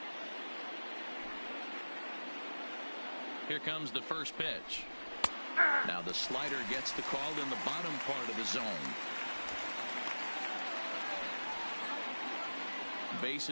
Here comes the first pitch. Now the slider gets the call in the bottom part of the zone.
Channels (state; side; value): inverted; both; correlation -1.00